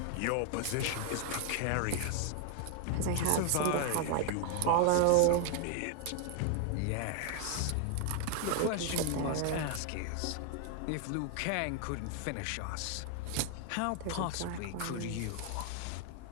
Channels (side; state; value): both; different; correlation 0.00